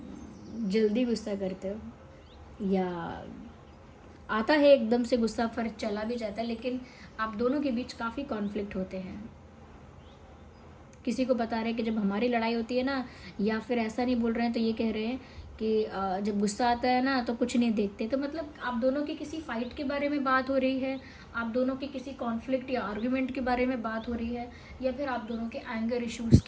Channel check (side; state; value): both; identical; correlation 1.00